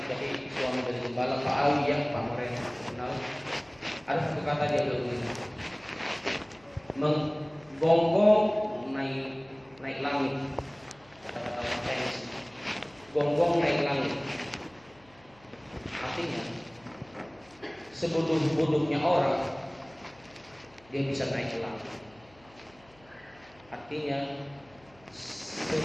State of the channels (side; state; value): left; noise; hum, 28 dB below the sound